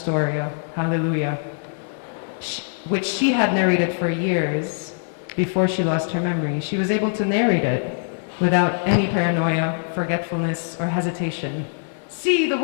Hallelujah, which she had narrated for years before she lost her memory, she was able to narrate it without any paranoia, forgetfulness, or hesitation. See the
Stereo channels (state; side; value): silent; right; 64 dB below the other